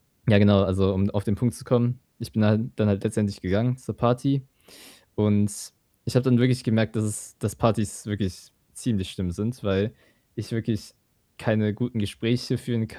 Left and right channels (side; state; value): both; identical; correlation 1.00